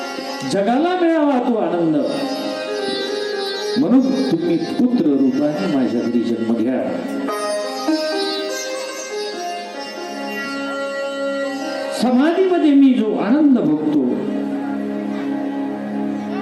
जगाला मिळावा तो आनंद. म्हणून तुम्ही पुत्र रूपाने माझ्या घरी जन्म घ्या. समाधीमध्ये मी जो आनंद भोगतो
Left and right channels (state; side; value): identical; both; correlation 1.00